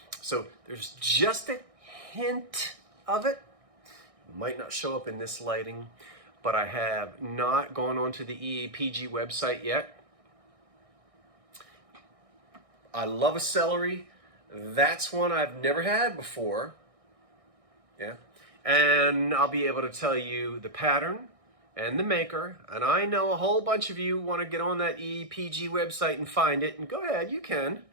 So there's just a hint of it. Might not show up in this lighting, but I have not gone onto the EAPG website yet. I love a celery. That's one I've never had before. Yeah. And I'll be able to tell you the pattern and the maker. And I know a whole bunch of you want to get on that EAPG website and find it. And go ahead, you can.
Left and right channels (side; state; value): left; late; 1.6 ms